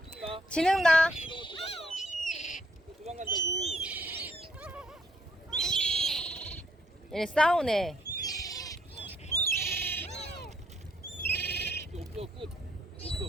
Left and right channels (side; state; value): both; normal; correlation 0.68